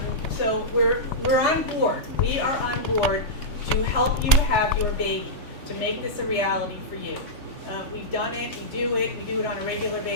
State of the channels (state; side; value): late; right; 3.4 ms